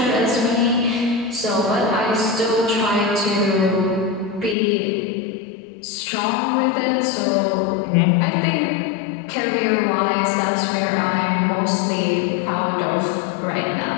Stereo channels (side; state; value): right; drops out; at 4.5 s